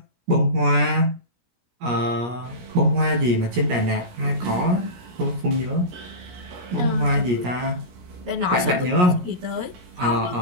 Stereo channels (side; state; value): left; late; 17 ms